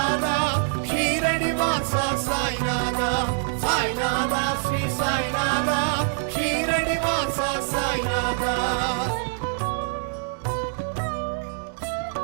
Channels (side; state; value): left; silent; digital silence